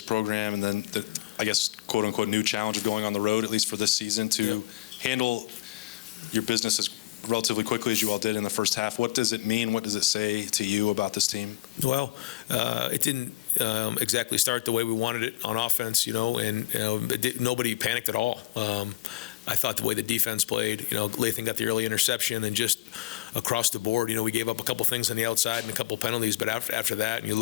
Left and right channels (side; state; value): right; quieter; 17.7 dB